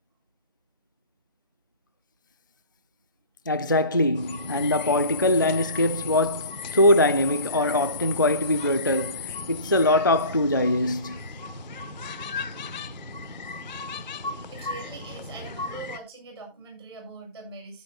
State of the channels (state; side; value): inverted; both; correlation -0.41